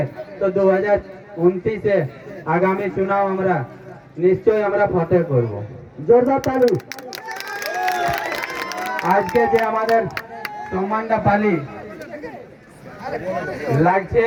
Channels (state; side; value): identical; both; correlation 1.00